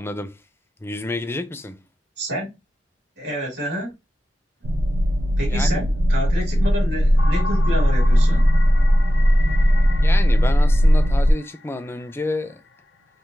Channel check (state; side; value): normal; both; correlation 0.94